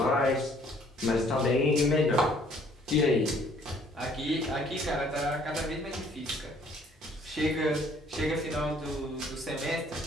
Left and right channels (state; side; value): normal; both; correlation 0.60